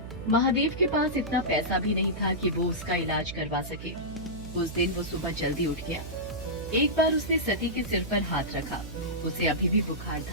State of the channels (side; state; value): right; noise; hum, 11 dB below the sound